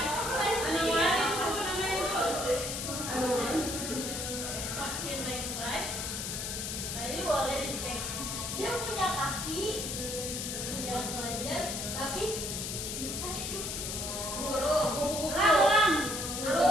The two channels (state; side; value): noise; left; hiss, 4 dB below the sound